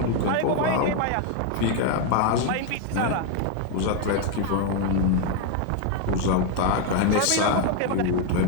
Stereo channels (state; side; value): different; both; correlation 0.01